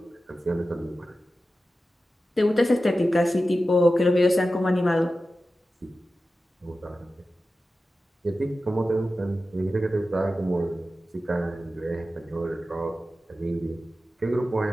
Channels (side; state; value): both; normal; correlation 0.93